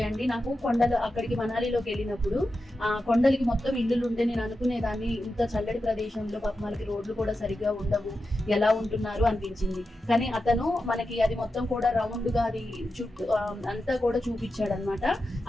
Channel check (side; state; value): both; normal; correlation 0.90